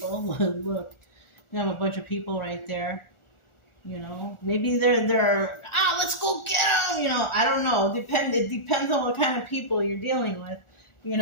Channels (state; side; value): late; right; 1.4 ms